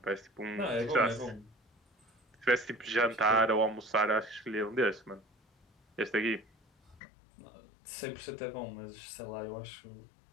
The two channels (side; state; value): right; drops out; at 7.0 s